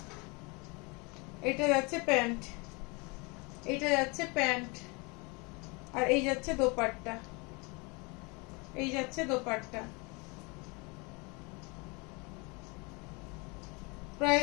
এটা যাচ্ছে প্যান্ট, এটা যাচ্ছে প্যান্ট, আর এই যাচ্ছে দোপাট্টা, এই যাচ্ছে দোপাট্টা।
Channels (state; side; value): quieter; right; 28.9 dB